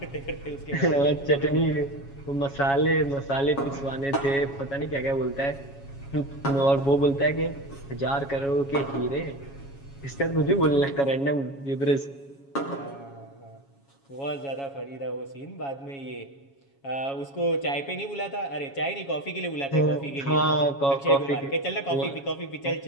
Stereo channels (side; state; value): right; late; 7.2 ms